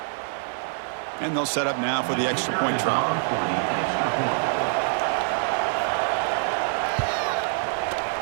And they'll set up now for the extra point try.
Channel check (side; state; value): left; silent; digital silence